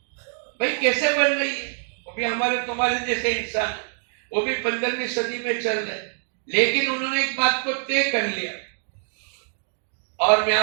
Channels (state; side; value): silent; left; digital silence